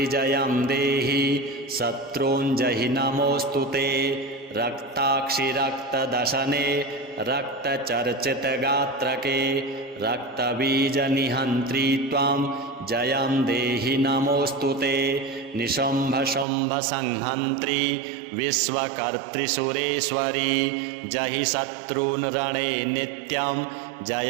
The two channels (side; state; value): left; drops out; at 16.4 s